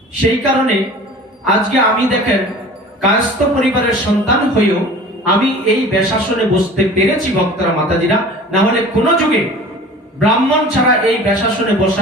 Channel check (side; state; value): both; normal; correlation 0.42